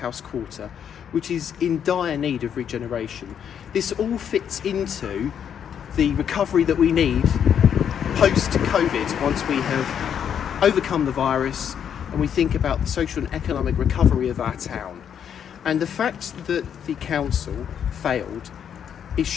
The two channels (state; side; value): quieter; right; 8.5 dB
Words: Quarter, which is in dire need of regeneration. This all fits into the recovery that we need post-COVID, once we have overcome the virus and we think about the social and economic recovery of our town. And the fact that the council failed is